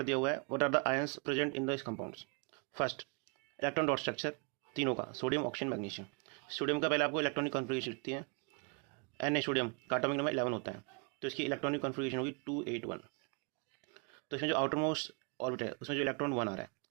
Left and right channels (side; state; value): left; quieter; 35.0 dB